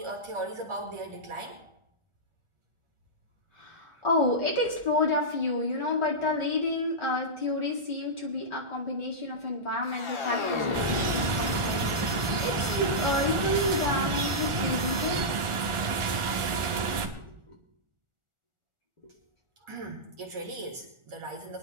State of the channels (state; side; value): late; left; 1.4 ms